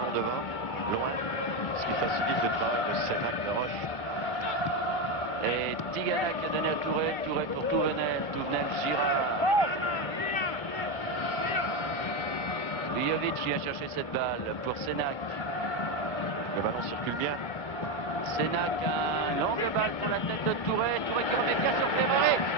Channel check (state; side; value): normal; both; correlation 0.12